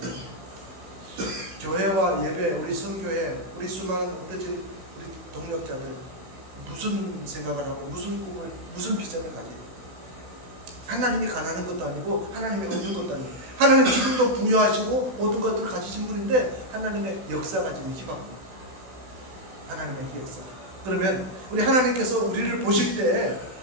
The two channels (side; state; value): left; late; 16 ms